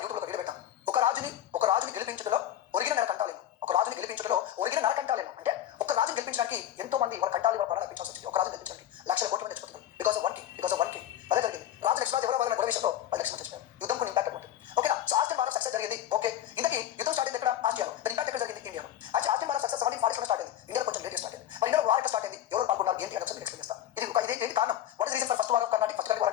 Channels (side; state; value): right; quieter; 11.6 dB